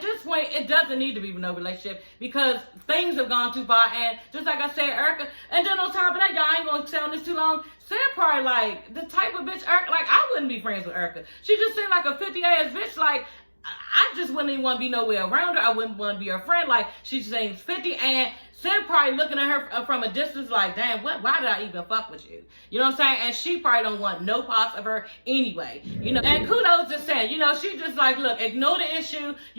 point it doesn't need to be no relationship because things have gone too far, and just like I said, Erica, and then on top of that, y'all ain't gonna stay on this too long. Sam probably like the type of bitch Erica, like I wouldn't be friends with Erica. She just seemed like a 50-ass bitch, like. I just wouldn't even want to be nowhere around her. I wouldn't want to be her friend. Like, she seems 50, and Sam probably looking at her from a distance like, damn, why did I even fuck with you? You know what I'm saying? And she probably don't want no parts of her anyway. And kudos to Sam. She just like, look, ignore the issue,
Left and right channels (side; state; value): both; inverted; correlation -1.00